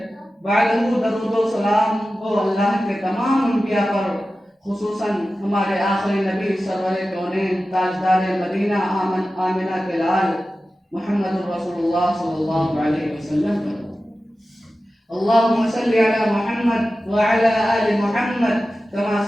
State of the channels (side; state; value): both; normal; correlation 0.94